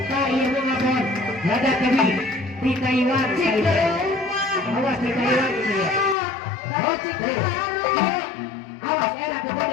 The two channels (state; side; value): drops out; right; at 6.2 s